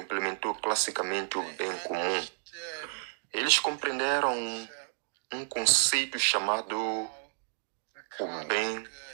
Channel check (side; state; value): left; silent; digital silence